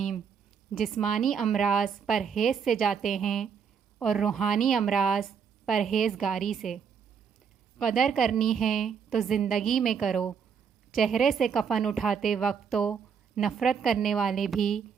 جسمانی امراض پرہیز سے جاتے ہیں اور روحانی امراض پرہیزگاری سے۔ قدر کرنی ہے تو زندگی میں کرو، چہرے سے کفن اٹھاتے وقت تو نفرت کرنے والے بھی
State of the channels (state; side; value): quieter; left; 6.8 dB